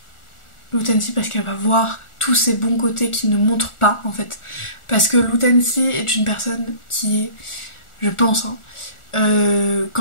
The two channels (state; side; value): late; right; 1.4 ms